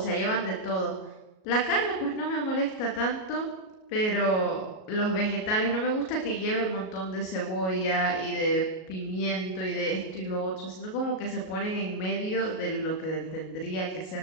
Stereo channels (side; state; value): right; late; 38 ms